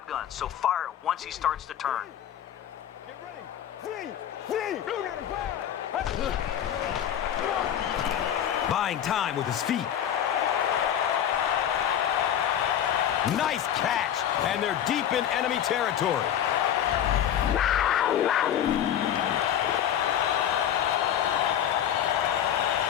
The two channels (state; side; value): quieter; right; 10.1 dB